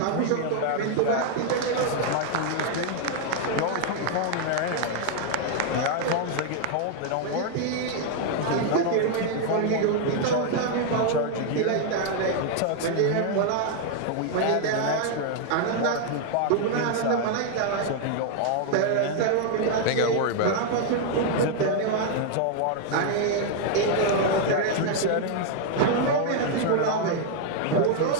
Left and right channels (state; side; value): different; both; correlation 0.00